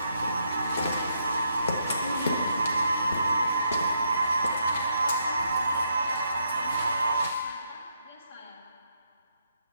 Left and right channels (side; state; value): both; inverted; correlation -0.76